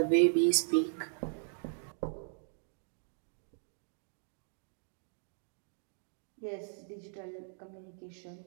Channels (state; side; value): silent; left; digital silence